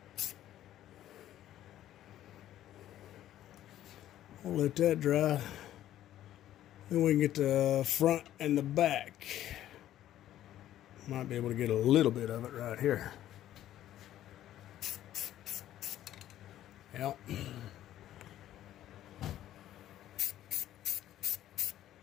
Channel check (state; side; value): quieter; right; 12.6 dB